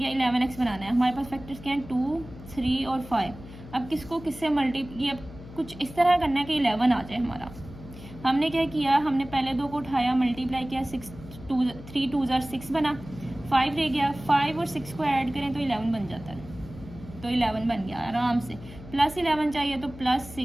11x बनाना है। हमारे पास फैक्टर्स क्या हैं, 2 3 और 5। अब किसको किससे मल्टीप्लाई, अब कुछ इस तरह करना है कि 11 आ जाए हमारा। हमने क्या किया, हमने पहले 2 को उठाया, मल्टीप्लाई किया, 3 2 ज़ार 6 बना, 5 रह गया। 5 और 6 को ऐड करें तो 11 बन जाता है, तो 11 बन गया आराम से। प्लस 11 चाहिए तो प्लस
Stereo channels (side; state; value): left; noise; hum, 16 dB below the sound